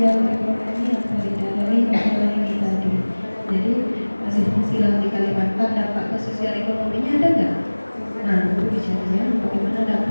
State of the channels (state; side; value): inverted; both; correlation -1.00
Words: ekonomi apa tidak dari masalah ini tadi. Jadi masih fungsi lahan di Kalimantan, dampak ke sosial ekonominya ada nggak? Nah, itu bicaranya bagaimana